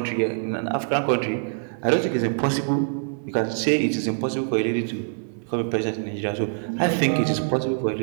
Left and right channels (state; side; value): silent; left; digital silence